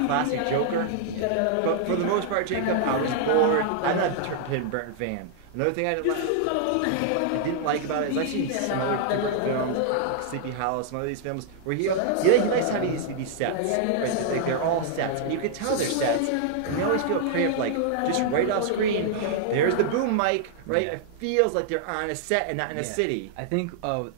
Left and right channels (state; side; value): different; both; correlation -0.01